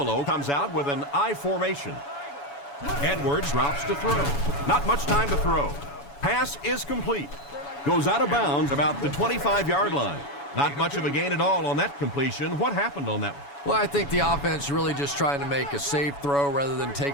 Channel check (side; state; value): right; late; 7.1 ms